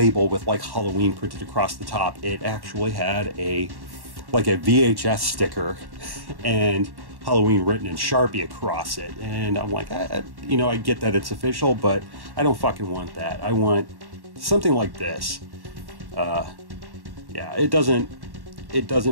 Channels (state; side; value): late; left; 1.1 ms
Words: with like Halloween printed across the top, it actually had like a VHS sticker and Halloween written in Sharpie across it. And I'm like, you know, I get that it's official, but I don't fucking want that. I want something like this. Yeah, it